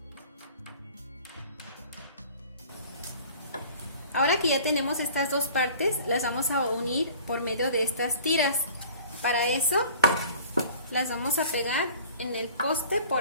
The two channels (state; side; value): inverted; both; correlation -0.48